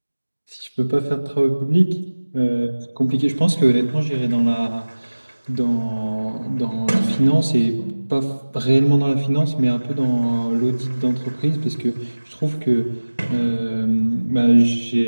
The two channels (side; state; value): both; inverted; correlation -1.00